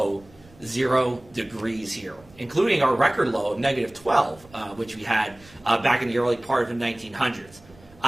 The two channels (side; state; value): right; noise; rumble, 25 dB below the sound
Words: 0 degrees here, including our record low of negative 12, which we had back in the early part of the 1900s.